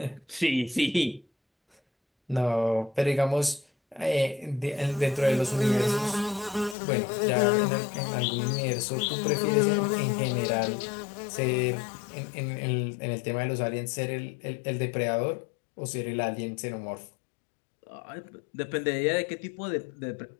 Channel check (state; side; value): drops out; right; at 6.8 s